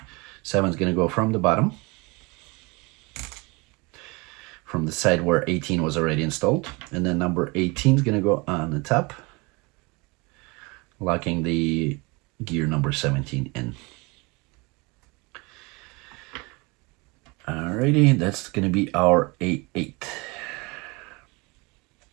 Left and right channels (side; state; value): left; quieter; 26.8 dB